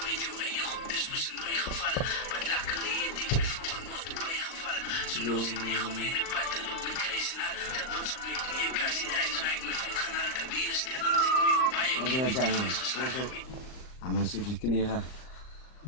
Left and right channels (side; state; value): right; late; 39 ms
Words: met jou en je goed is moest in mijn geval. Wat luckily het ik me vroeger nog te bijgevallen. Zo los ik niet om in de pad te lopen met kruis en al. Dat was op mijn knieën. Kan ze daar is ik me vet gaan al te weer stellen. Als ik nu op bij je Wat keer wil met dat die zijn, vuist geslagen. Ah, man, zit je kneren.